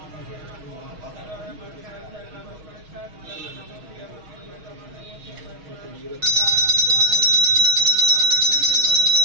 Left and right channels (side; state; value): left; late; 6.4 ms